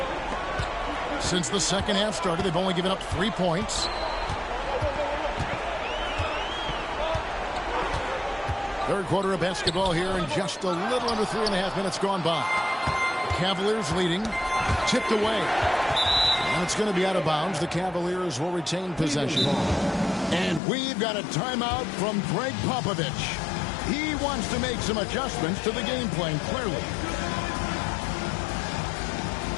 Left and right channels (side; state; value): right; drops out; at 20.6 s